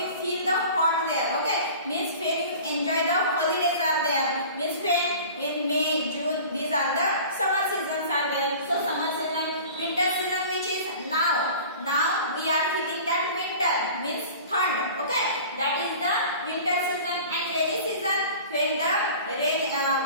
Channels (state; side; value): inverted; both; correlation -0.41